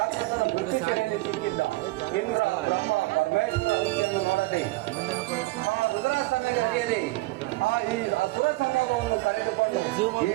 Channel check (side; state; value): left; quieter; 20.7 dB